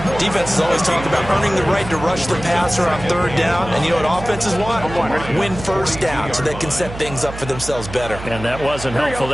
Defenses always talk about earning the right to rush the passer on 3rd down. And you know what offenses want? Win 1st down so they can set things up for themselves better. And that wasn't helpful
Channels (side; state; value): right; noise; hum, 12 dB below the sound